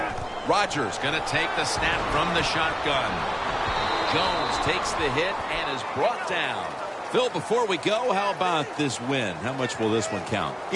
Rodgers going to take the snap from the shotgun. Jones takes the hit and is brought down. Phil, before we go, how about this win? How much will this one count?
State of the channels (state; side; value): identical; both; correlation 1.00